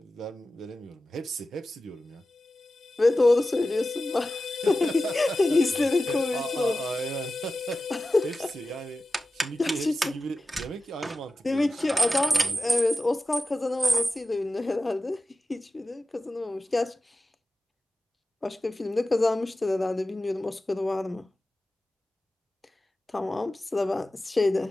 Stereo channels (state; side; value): normal; both; correlation 0.94